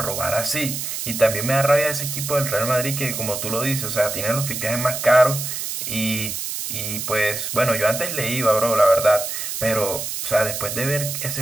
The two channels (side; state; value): right; noise; hiss, 5 dB below the sound